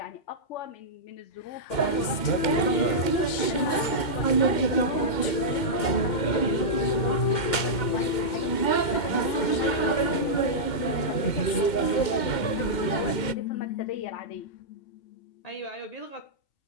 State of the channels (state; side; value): late; right; 2.1 ms